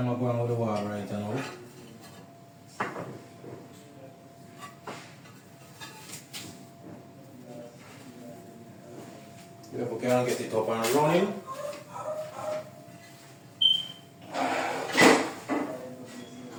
to go on with the wall right now. If we can get it up and running.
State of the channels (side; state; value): both; identical; correlation 1.00